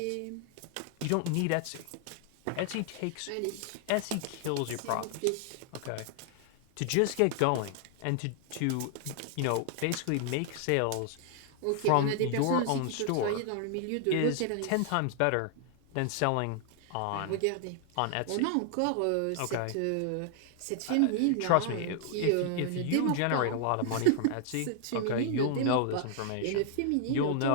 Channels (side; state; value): both; different; correlation 0.00